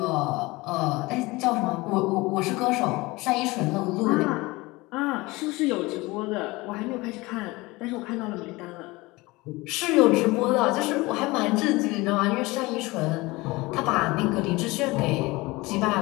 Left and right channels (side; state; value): right; quieter; 22.0 dB